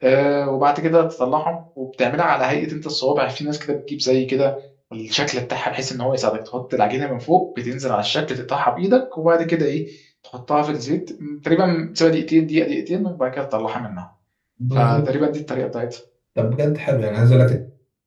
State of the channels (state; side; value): identical; both; correlation 1.00